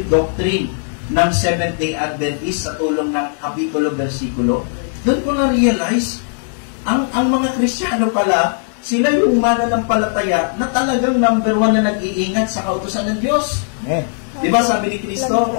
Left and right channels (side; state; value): right; silent; 68 dB below the other